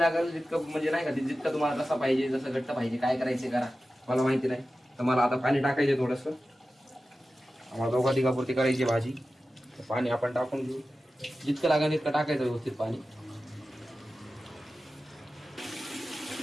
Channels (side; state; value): both; normal; correlation 0.94